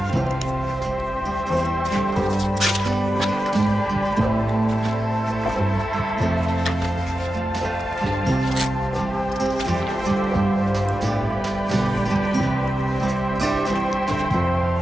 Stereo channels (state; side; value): normal; both; correlation 0.91